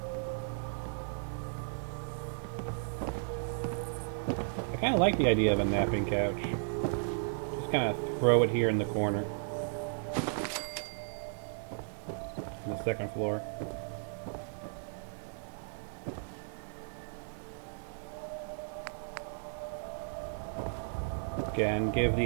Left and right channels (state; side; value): silent; left; digital silence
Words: I kind of like the idea of a napping couch. Just kind of throw it here in the corner. On the second floor. Again, give